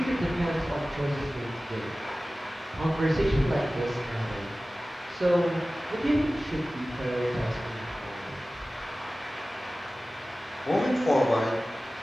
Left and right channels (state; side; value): normal; both; correlation 0.97